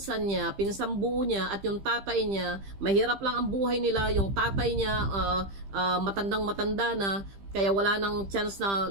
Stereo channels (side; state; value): left; late; 15 ms